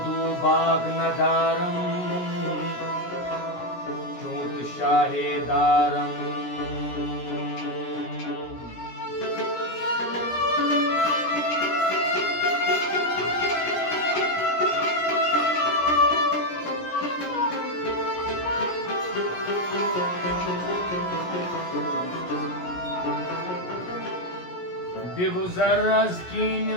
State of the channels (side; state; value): right; late; 17 ms